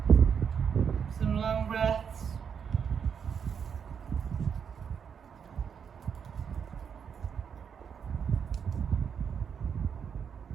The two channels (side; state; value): left; quieter; 7.1 dB